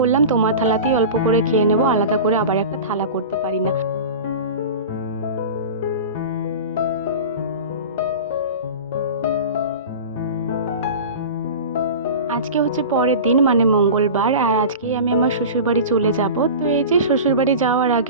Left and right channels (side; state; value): both; inverted; correlation -0.32